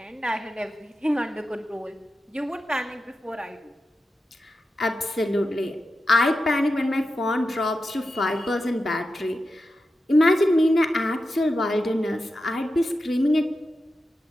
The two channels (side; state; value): both; normal; correlation 0.90